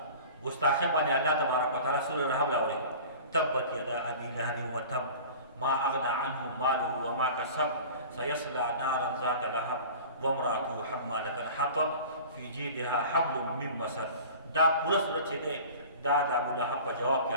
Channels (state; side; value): inverted; both; correlation -0.40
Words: ګستاخۍ باندې الله تبارک وتعالی سوره رحم راوړي تبت یدا ابي لهب وتب ما اغنى عنه ماله وما كسب سيصلى نارا ذات لهب وامراته حمالة الحطب في جيدها حبل من مسد دا پورا صورت چې دی دا د ابولهب په جواب کې